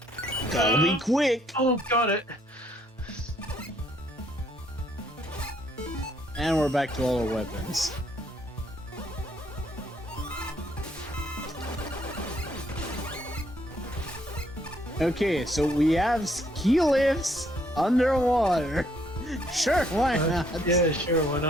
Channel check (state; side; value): normal; both; correlation 0.68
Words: Gotta be quick! Oh, got it! And we're back to all our weapons. Okay, so we have ski lifts underwater. Sure, why not? Yeah, sure, why